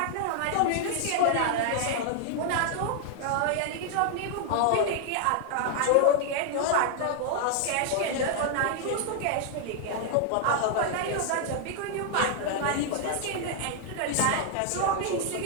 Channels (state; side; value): different; both; correlation 0.00